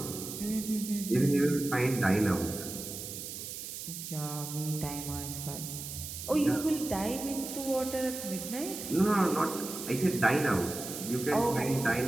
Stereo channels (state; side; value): noise; right; hiss, 8 dB below the sound